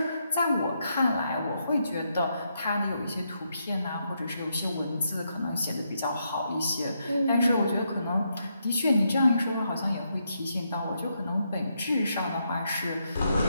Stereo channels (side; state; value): both; inverted; correlation -0.80